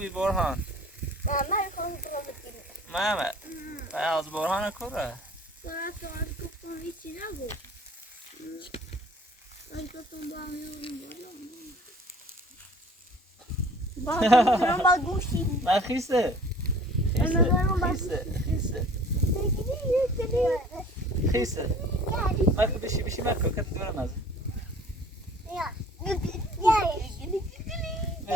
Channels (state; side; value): normal; both; correlation 0.50